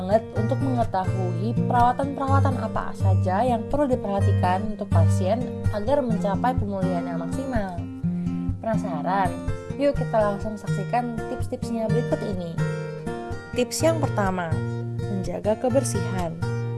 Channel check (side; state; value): both; identical; correlation 1.00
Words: untuk mengetahui perawatan-perawatan apa saja yang perlu diperhatikan untuk pasien agar mencapai pemulihan yang maksimal. Penasaran? Yuk kita langsung saksikan tips-tipsnya berikut ini. Tips yang pertama, menjaga kebersihan.